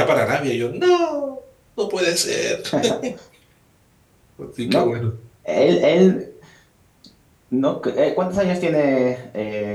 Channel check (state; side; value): identical; both; correlation 1.00